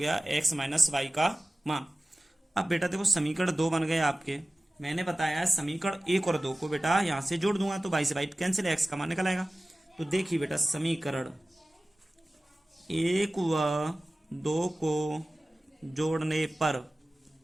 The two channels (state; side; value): normal; both; correlation 0.97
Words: x माइनस वाई का मान। अब बेटा देखो समीकरण 2 बन गए आपके। मैंने बताया समीकरण 1 और 2 को बेटा यहाँ से जोड़ दूंगा तो y से y कैंसिल, x का मान निकल आएगा। तो देखिए बेटा समीकरण 1 व 2 को जोड़ने पर,